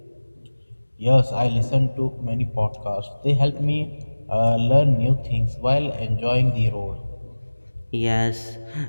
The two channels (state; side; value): inverted; both; correlation -1.00